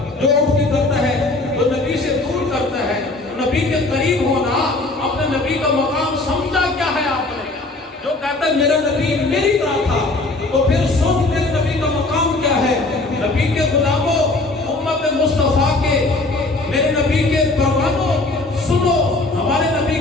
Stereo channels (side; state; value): right; quieter; 3.0 dB